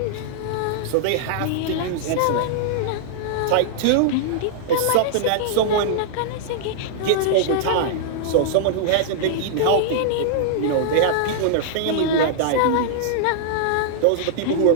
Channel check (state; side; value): different; both; correlation -0.01